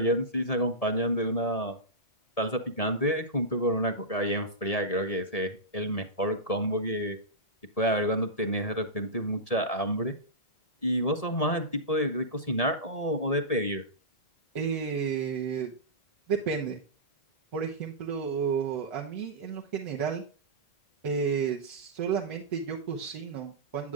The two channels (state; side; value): late; right; 1.7 ms